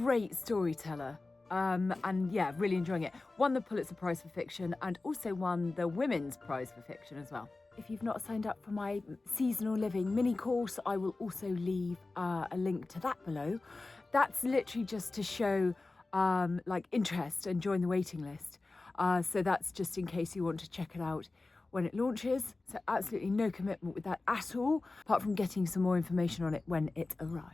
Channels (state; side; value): quieter; right; 3.4 dB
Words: storyteller. And yeah, really enjoying it. Won the Pulitzer Prize for Fiction and also won the Women's Prize for Fiction as well. If you've not signed up for my seasonal living mini course, I will also leave a link to that below. That's literally just to show like interest and join the waiting list. So that's just in case you want to check it out when it launches. So absolutely no commitment with that at all, apart from getting some more information on it when it